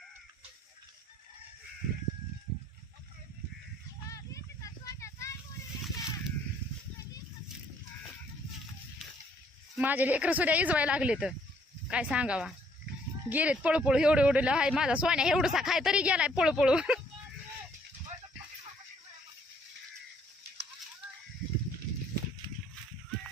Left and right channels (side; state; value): both; normal; correlation 0.65